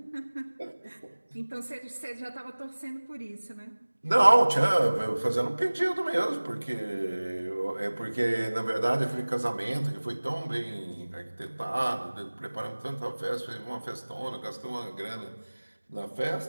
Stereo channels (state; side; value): inverted; both; correlation -1.00